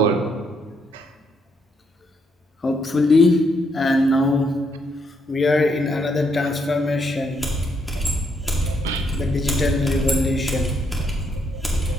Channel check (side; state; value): both; normal; correlation 0.75